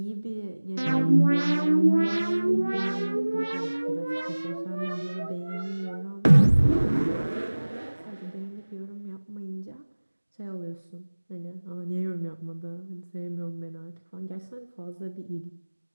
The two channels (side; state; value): both; inverted; correlation -1.00